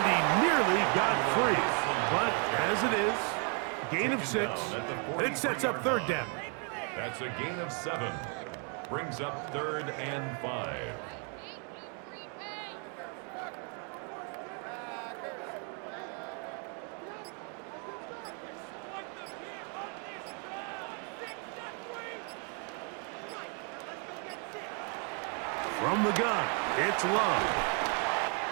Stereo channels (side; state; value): left; quieter; 39.2 dB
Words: he nearly got free. But as it is, gain of 6. It sets up third down. That's a gain of 7. Brings up third and 5. From the gun, it's Love.